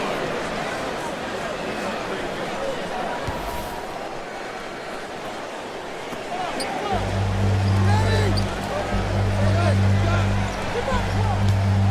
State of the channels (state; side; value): identical; both; correlation 1.00